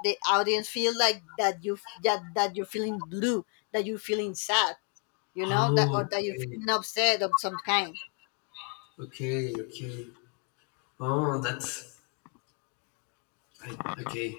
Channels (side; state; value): right; quieter; 38.3 dB